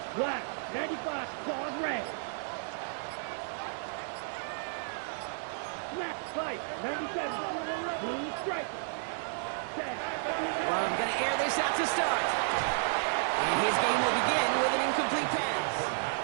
Black, 95, claws red. Snap, fight, 97, blue striker. Well, I'm going to air this out to start. And his game will begin with an incomplete pass.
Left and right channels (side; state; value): left; silent; digital silence